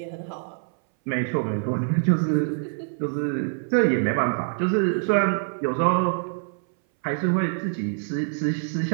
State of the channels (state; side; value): silent; left; 60 dB below the other